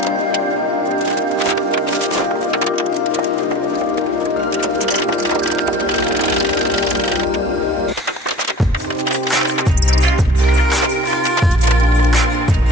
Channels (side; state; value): both; normal; correlation 0.43